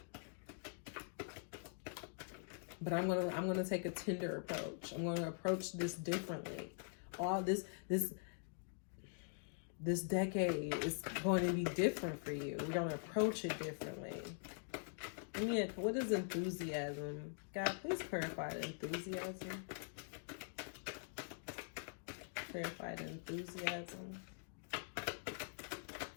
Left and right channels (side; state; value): right; silent; digital silence